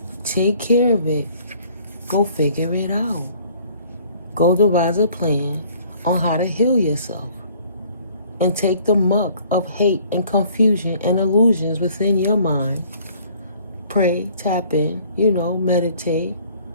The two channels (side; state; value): both; inverted; correlation -0.56